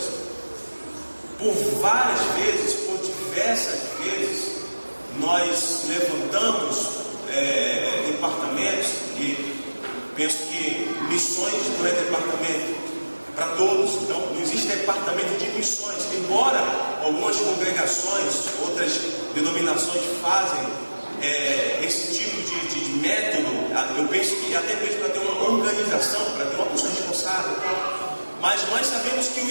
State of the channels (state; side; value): inverted; both; correlation -1.00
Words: Por várias vezes, por diversas vezes, nós levantamos departamentos, e penso que missões não é departamento para todos. Então não existe departamento de missões, embora algumas congregações, outras denominações fazem esse tipo de método. Eu penso que até mesmo para ter uma organização, para ter uma pessoa responsável, mas nós sabemos que o